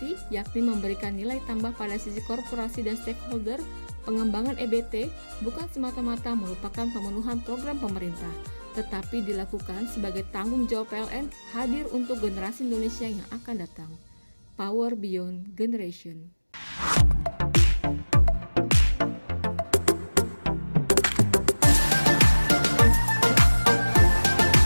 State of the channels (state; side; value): inverted; both; correlation -1.00